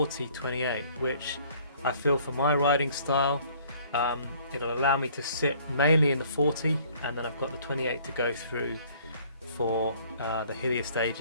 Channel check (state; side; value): inverted; both; correlation -0.57